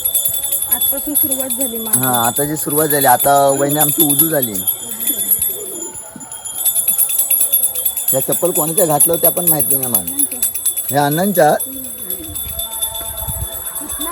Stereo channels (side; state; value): both; identical; correlation 1.00